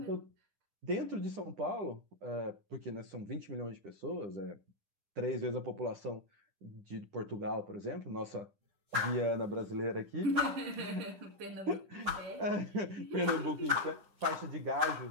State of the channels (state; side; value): late; left; 10 ms